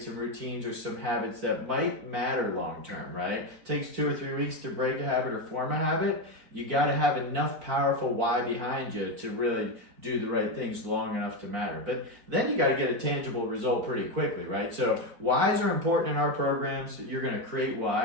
some routines or some habits that might matter long term, right? It takes 2 or 3 weeks to break a habit or form a habit. You got to have enough powerful why behind you to really do the right things long enough to matter. But then you got to get a tangible result pretty quickly, right? So whys are important in our programs. You're going to create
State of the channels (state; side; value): late; left; 4.4 ms